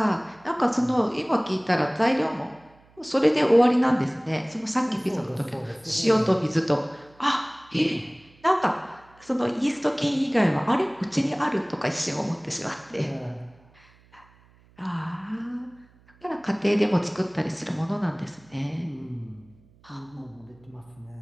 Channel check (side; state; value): right; noise; hum, 29 dB below the sound